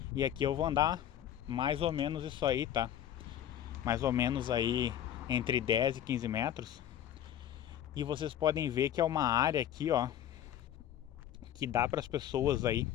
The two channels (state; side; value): quieter; right; 10.9 dB